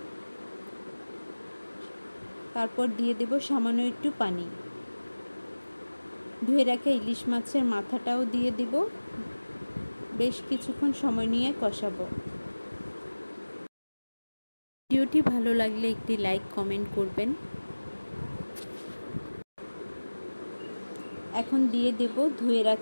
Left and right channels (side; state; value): both; inverted; correlation -1.00